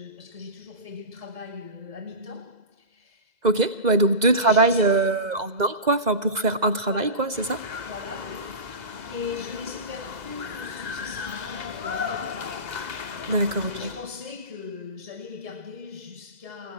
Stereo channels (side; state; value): left; late; 2.0 ms